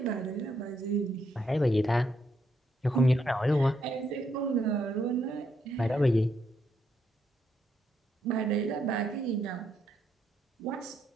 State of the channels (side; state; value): both; normal; correlation 0.76